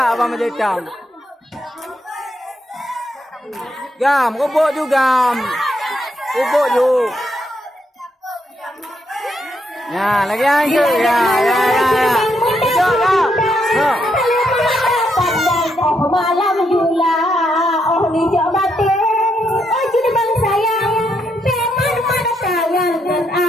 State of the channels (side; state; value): both; normal; correlation 0.78